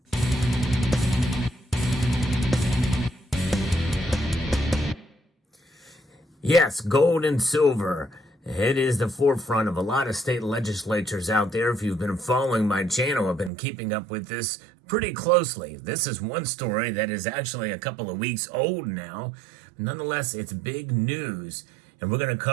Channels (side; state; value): left; drops out; at 13.5 s